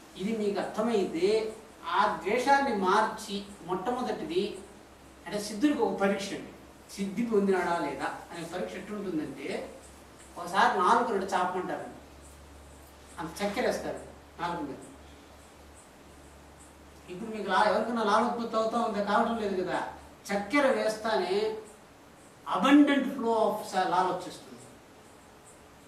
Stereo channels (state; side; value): identical; both; correlation 1.00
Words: ఇది మీకు అర్థమైతే ఆ ద్వేషాన్ని మార్చి, మొట్టమొదటిది అంటే సిద్ధుడికి ఒక పరీక్ష అండి, సిద్ధి పొందినాడా లేదా అనే పరీక్ష ఎట్లుంటుందంటే, ఒకసారి 4 చాపమంటారండి, అంత చక్కెర వేస్తారు 4 మీద. ఇప్పుడు మీకు ఎవరికైనా లాలోత్పత్తి అవుతా ఉందా? కావడం లేదు కదా. చక్కెర వేస్తానే అబండెంట్ ఫ్లో ఆఫ్ లాల్ వచ్చేస్తుంది.